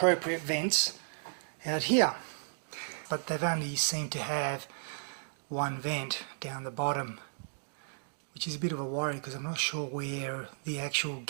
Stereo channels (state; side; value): silent; left; digital silence